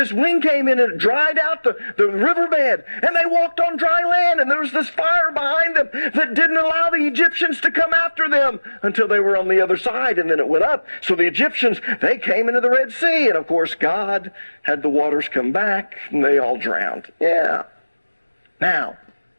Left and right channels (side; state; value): both; inverted; correlation -1.00